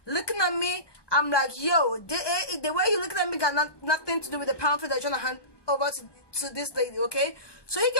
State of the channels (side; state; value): right; late; 1.2 ms